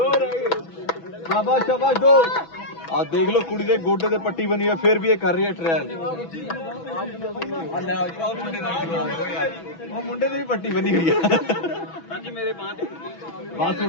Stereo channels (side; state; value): right; late; 6.1 ms